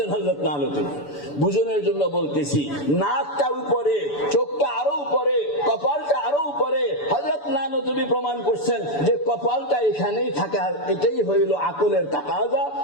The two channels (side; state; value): right; late; 6.9 ms